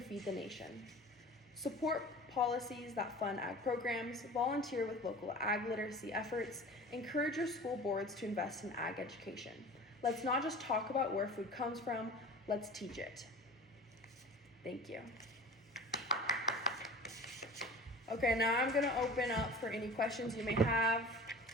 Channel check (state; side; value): normal; both; correlation 0.38